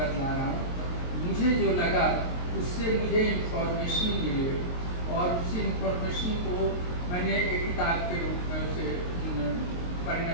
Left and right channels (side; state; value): right; late; 23 ms